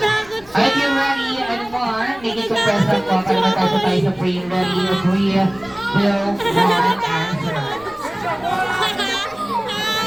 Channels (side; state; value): left; noise; rumble, 24 dB below the sound